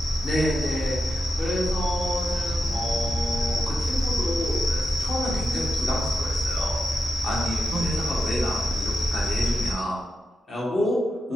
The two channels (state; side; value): normal; both; correlation 0.88